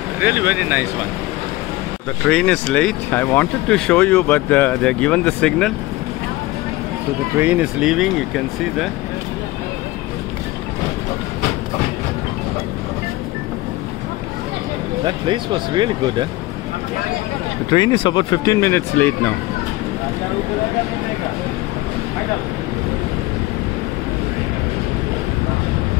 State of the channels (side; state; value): right; quieter; 19.0 dB